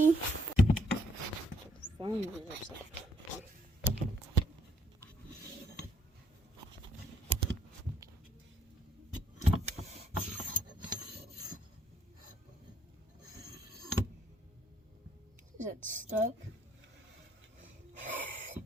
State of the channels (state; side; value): normal; both; correlation 0.68